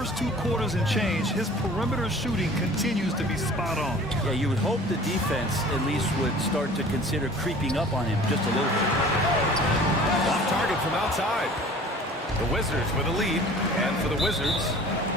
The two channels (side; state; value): both; normal; correlation 0.46